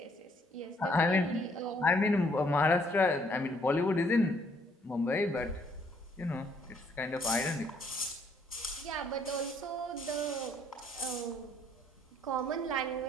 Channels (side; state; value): both; normal; correlation 0.66